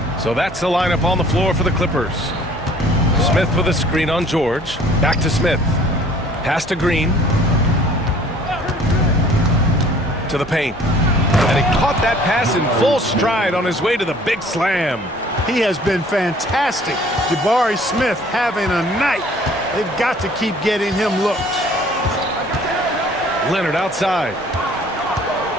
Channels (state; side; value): normal; both; correlation 0.54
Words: So that's the lineup on the floor for the Clippers. Smith with a screen on George. Back to Smith. Pass to Green. To the paint. And he caught that pass in full stride on his way to the big slam. He has been fantastic. Jabari Smith having a night. They've got to keep getting him looks. Leonard outside.